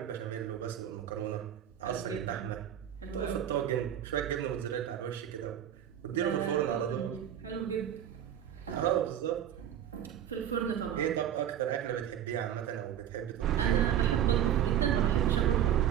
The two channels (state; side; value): quieter; left; 10.2 dB